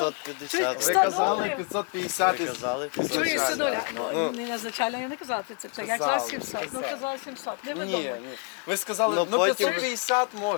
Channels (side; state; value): right; quieter; 34.7 dB